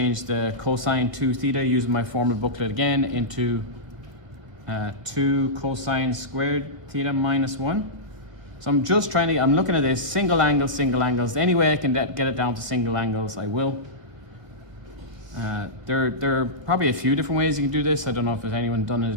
the cosine 2 theta using my formula booklet again into 2 cosine squared theta minus 1. So I'm just I'm looking at this, single angles. Any way I can get it down to single angles, I will. There are probably a few different ways you can do this. I don't know if there's anyone done it a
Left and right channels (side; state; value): left; late; 1.7 ms